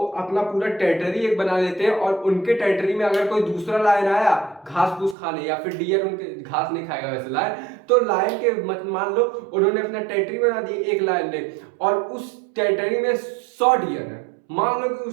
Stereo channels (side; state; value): left; drops out; at 5.2 s